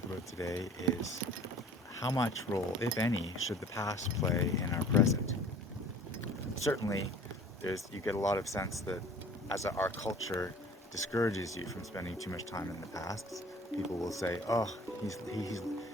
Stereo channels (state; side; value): normal; both; correlation 0.48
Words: about today is how much role, if any, should the past play in our present? Certainly, you get a lot of sense that as our culture discourages you from spending too much time in the past. People will say, "Oh,